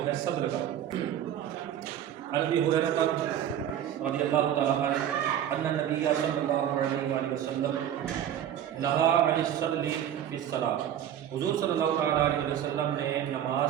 ہے صدر کا. عن ابی ہریرہ رضی اللہ تعالیٰ عنہ ان النبی صلی اللہ علیہ وآلہ وسلم نہا عن الصدر فی الصلاۃ. حضور صلی اللہ تعالیٰ علیہ وسلم نے نماز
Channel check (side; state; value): left; quieter; 10.4 dB